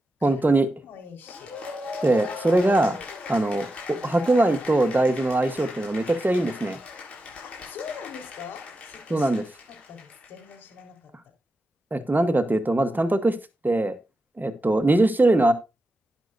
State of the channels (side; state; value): both; normal; correlation 0.89